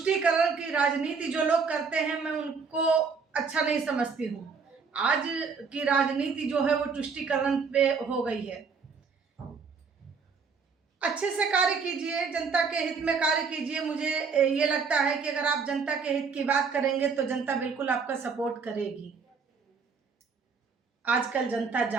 की राजनीति जो लोग करते हैं, मैं उनको अच्छा नहीं समझती हूँ। आज की राजनीति जो है वो तुष्टीकरण पे हो गई है। अच्छे से कार्य कीजिए, जनता के हित में कार्य कीजिए। मुझे ये लगता है कि अगर आप जनता के हित की बात करेंगे तो जनता बिल्कुल आपका सपोर्ट करेगी। आजकल जनता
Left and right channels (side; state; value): left; quieter; 5.3 dB